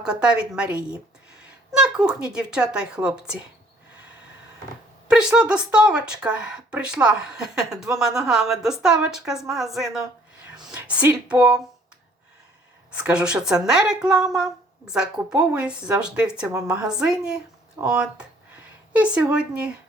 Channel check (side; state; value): both; normal; correlation 0.60